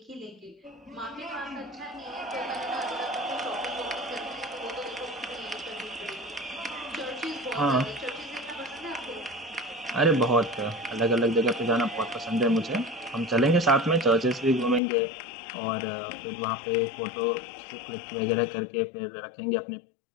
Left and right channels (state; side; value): drops out; right; at 14.8 s